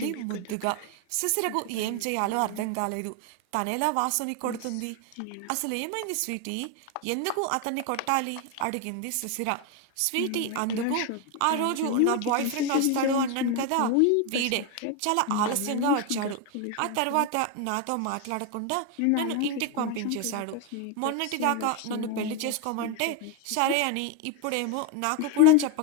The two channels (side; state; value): both; different; correlation 0.01